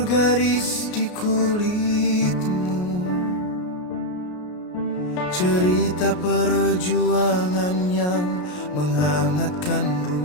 garis di kulitmu, cerita perjuangan yang menghangatkan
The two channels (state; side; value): late; right; 33 ms